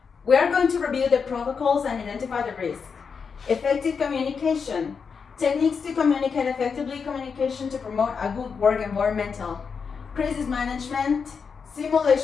We are going to review the protocols and identify the risks. Effective communication. Techniques to communicate effectively, communication to promote a good work environment. Crisis management,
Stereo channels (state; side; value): quieter; right; 5.8 dB